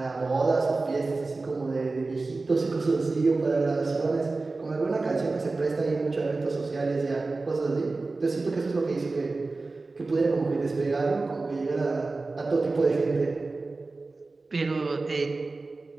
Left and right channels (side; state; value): left; quieter; 3.6 dB